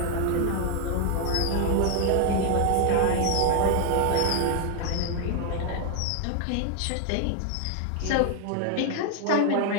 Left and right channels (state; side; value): different; both; correlation 0.01